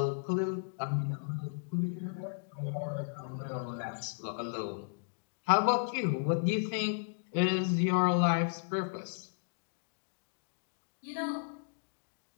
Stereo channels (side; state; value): right; silent; digital silence